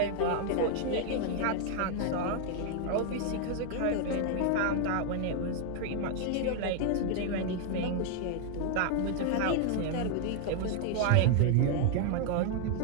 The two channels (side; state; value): both; different; correlation 0.00